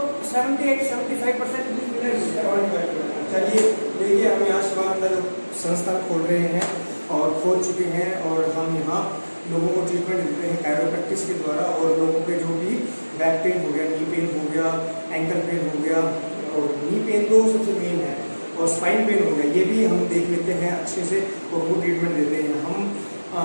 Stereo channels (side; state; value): both; inverted; correlation -1.00